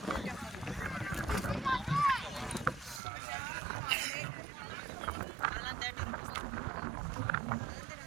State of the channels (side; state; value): left; drops out; at 3.0 s